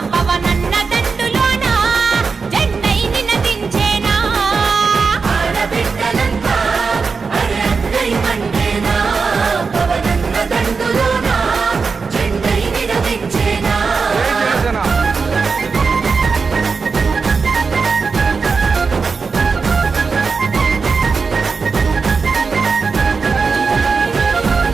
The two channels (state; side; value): quieter; left; 4.9 dB